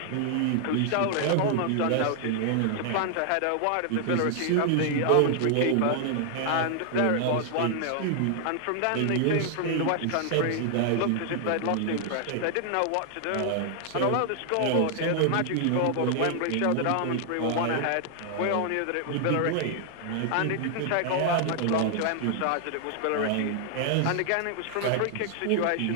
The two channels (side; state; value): both; different; correlation 0.00